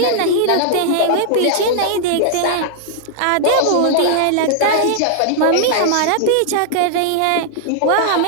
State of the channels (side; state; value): both; different; correlation -0.01